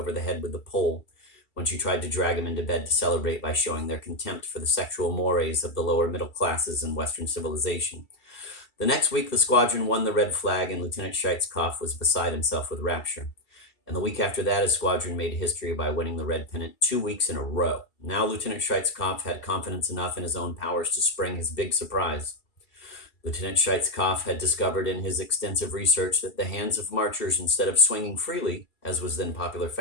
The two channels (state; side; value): late; right; 2.3 ms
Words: the head with the pole when she tried to drag him into bed to celebrate by showing their contempt for the sexual mores of the lower middle classes in Western civilization. The next week, the squadron won the red flag, and Lieutenant Scheitskoff was beside himself with rapture. And the week after that, his squadron made history by winning the red pennant 2 weeks in a row. Now Lieutenant Scheitskoff had confidence enough in his own powers to spring his big surprise. Lieutenant Scheitskoff had discovered in his extensive research that the hands of marchers, instead of swinging freely, as was then popular